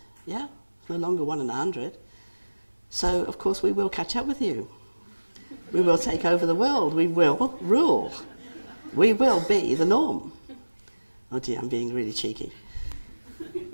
yeah, it's no longer 1 in 100. So, of course, we will catch up with you. We will take over the world. We will rule. We will be the norm. Oh dear, I'm being really cheeky.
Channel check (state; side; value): inverted; both; correlation -1.00